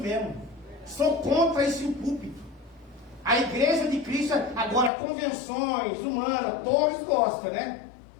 Sou contra isso em púlpito. A igreja de Cristo, agora convenções humanas, todos gostam, né?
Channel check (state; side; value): drops out; right; at 4.9 s